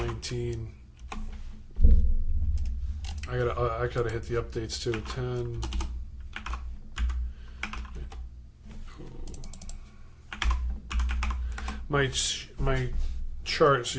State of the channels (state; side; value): identical; both; correlation 1.00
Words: I gotta hit the updates too. 10. My chart, so